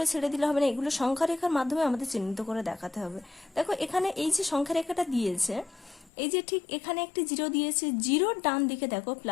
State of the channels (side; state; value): right; drops out; at 6.1 s